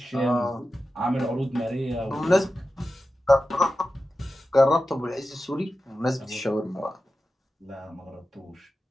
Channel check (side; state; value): both; normal; correlation 0.92